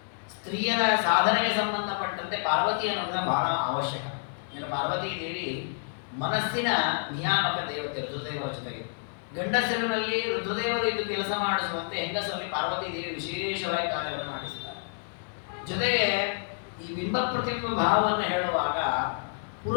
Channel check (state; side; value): silent; right; digital silence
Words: ಸ್ತ್ರೀಯರ ಸಾಧನೆಗೆ ಸಂಬಂಧಪಟ್ಟಂತೆ ಪಾರ್ವತಿಯ ಅನುಗ್ರಹ ಬಹಳ ಅವಶ್ಯಕ. ಅಂದರೆ ಪಾರ್ವತೀ ದೇವಿ ಮನಸ್ಸಿನ ನಿಯಾಮಕ ದೇವತೆ ರುದ್ರದೇವರ ಜೊತೆಗೆ. ಗಂಡಸರಿನಲ್ಲಿ ರುದ್ರದೇವರು ಇದ್ದು ಕೆಲಸ ಮಾಡಿಸುವಂತೆ ಹೆಂಗಸರಲ್ಲಿ ಪಾರ್ವತೀ ದೇವಿ ವಿಶೇಷವಾಗಿ ಕಾರ್ಯವನ್ನು ಮಾಡಿಸ್ತಾರೆ. ಜೊತೆಗೆ ಈ ಬಿಂಬ ಪ್ರತಿಬಿಂಬ ಭಾವವನ್ನು ಹೇಳುವಾಗ